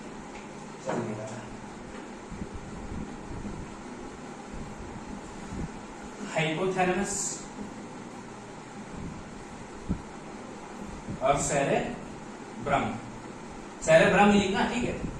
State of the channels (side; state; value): both; identical; correlation 1.00